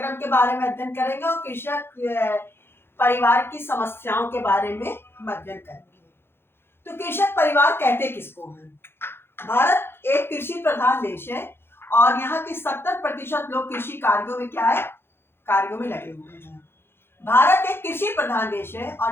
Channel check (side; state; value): right; late; 0.11 ms